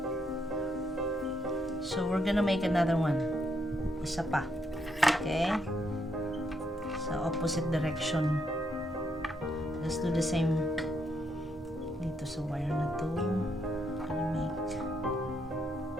so we're gonna make another one. Isa pa. Okay? Sa opposite direction. Let's do the same dito sa wire na to. Gonna make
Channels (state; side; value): normal; both; correlation 0.77